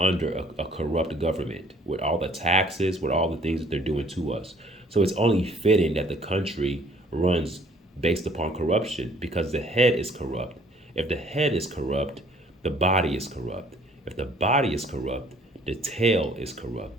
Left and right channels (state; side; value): normal; both; correlation 0.58